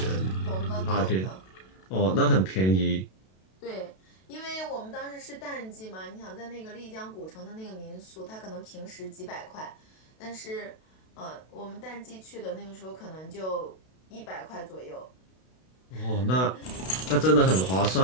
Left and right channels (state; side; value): late; right; 32 ms